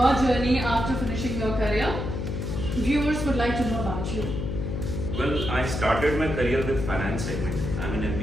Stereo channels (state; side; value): noise; left; hum, 3 dB below the sound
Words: journey after finishing your career. Viewers would like to know about you. Well, I started my career with finance segment. I'm an